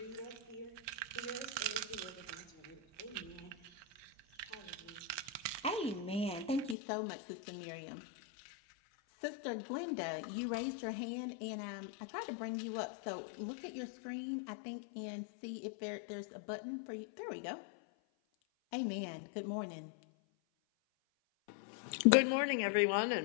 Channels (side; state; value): right; drops out; at 6.8 s